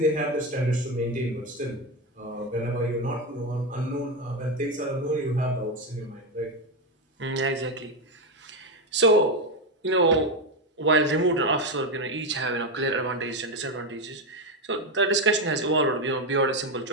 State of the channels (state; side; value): normal; both; correlation 0.11